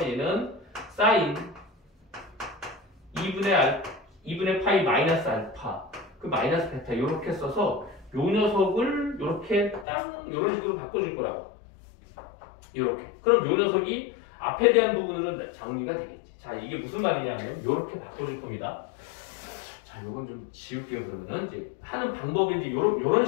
얘는 사인 2분의 파이 마이너스 알파 그 마이너스 베타 이렇게 써서 요 녀석을 이렇게 땅 이런 식으로 바꿔줄 거라고. 이렇게. 그럼 요 녀석이 앞에 대한 부분은 정리가 되겠지. 자, 이게 무슨 말이냐면 이렇게 바꿔줄 겁니다. 자, 요건 좀 지울게요. 그러면은 이제 하는 방법이 이제 요런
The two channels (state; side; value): drops out; right; at 9.9 s